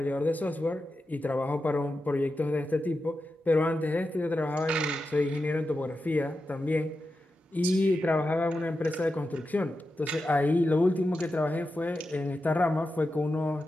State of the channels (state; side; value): normal; both; correlation 0.90